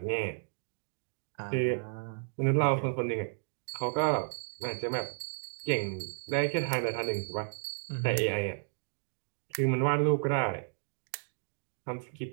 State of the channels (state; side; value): silent; left; digital silence